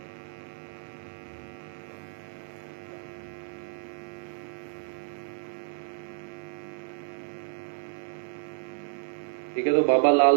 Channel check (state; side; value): silent; left; digital silence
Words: ठीक है, तो बाबा